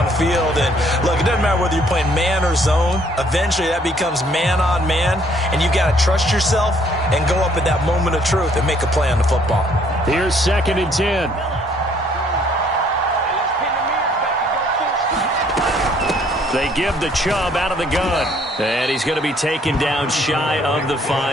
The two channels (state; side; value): normal; both; correlation 0.63